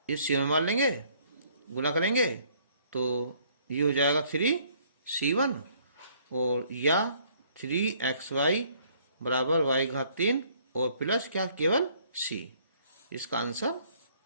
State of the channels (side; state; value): both; inverted; correlation -0.62